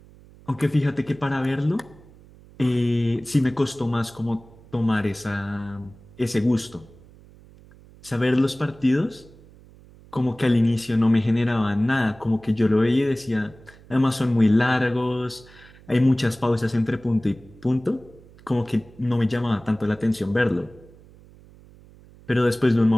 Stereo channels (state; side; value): noise; right; hum, 24 dB below the sound